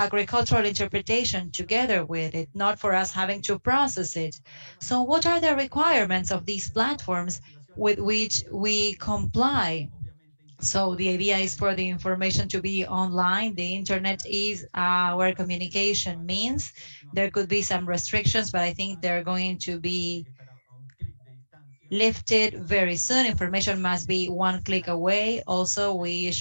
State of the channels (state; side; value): inverted; both; correlation -1.00